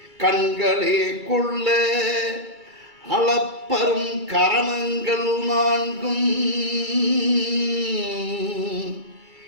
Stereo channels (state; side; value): late; left; 2.3 ms